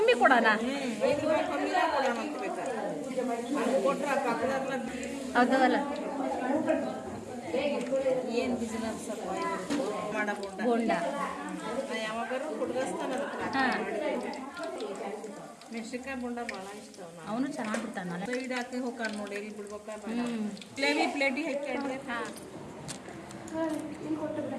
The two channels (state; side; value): identical; both; correlation 1.00